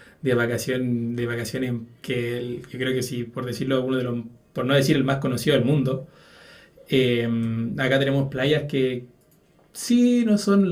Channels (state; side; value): identical; both; correlation 1.00